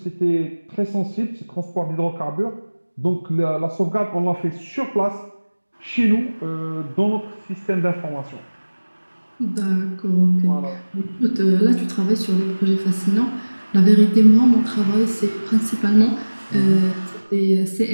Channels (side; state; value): both; inverted; correlation -1.00